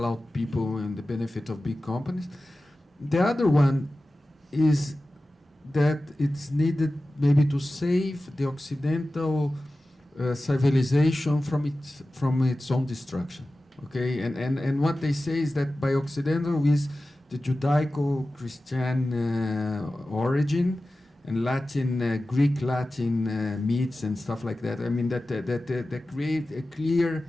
out people in the benefit of big companies. The other one is that it's needed maybe to save the Occidental civilization from its own destruction. Okay, and what they say is that by Occidental is the Judaico-Christian origin and Latin, Greek-Latin myths and stuff like that. I mean that create a clear.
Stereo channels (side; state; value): both; normal; correlation 0.95